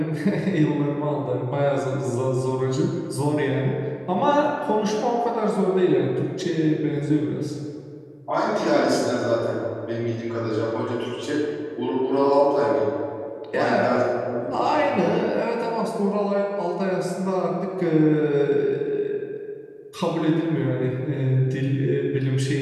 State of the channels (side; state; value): both; identical; correlation 1.00